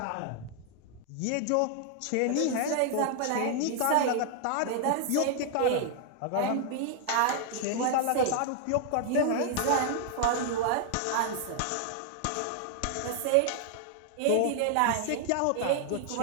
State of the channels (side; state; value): both; different; correlation 0.00